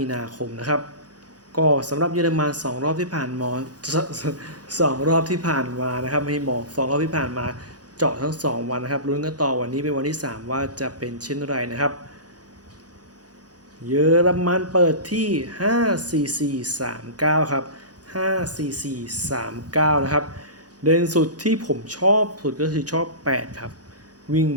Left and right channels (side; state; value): left; late; 0.69 ms